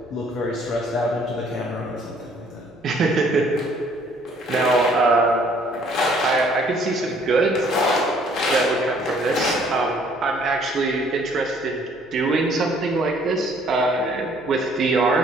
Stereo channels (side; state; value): both; normal; correlation 0.60